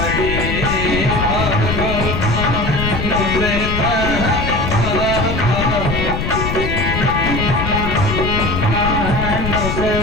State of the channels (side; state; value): left; noise; rumble, 2 dB below the sound